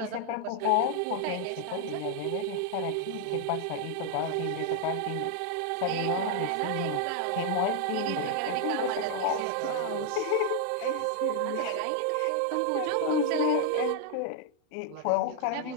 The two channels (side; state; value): both; different; correlation 0.00